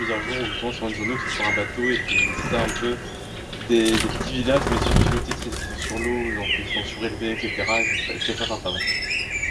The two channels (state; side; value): identical; both; correlation 1.00